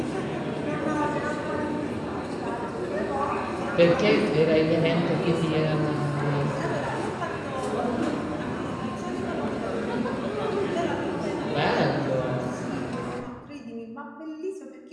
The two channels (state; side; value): identical; both; correlation 1.00